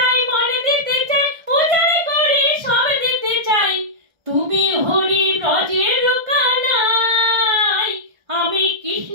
মন দিতে চাই, উজাড় করে সব দিতে চাই, তুমি হরি ব্রজের কানাই। আমি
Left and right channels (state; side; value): late; left; 1.3 ms